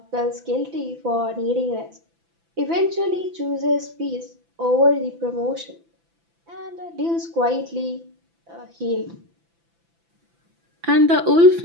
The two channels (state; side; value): late; left; 6.0 ms